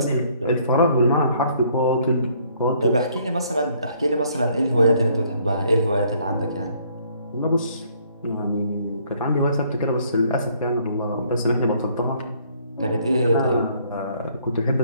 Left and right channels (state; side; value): inverted; both; correlation -0.64